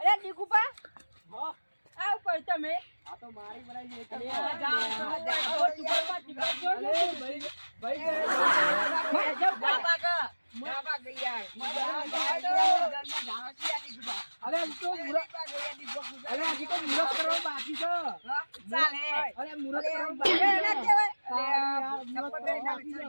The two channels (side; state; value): both; inverted; correlation -1.00